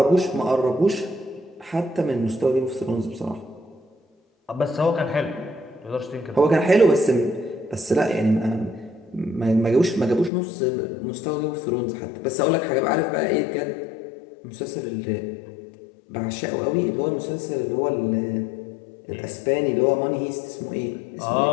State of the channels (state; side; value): drops out; right; at 10.3 s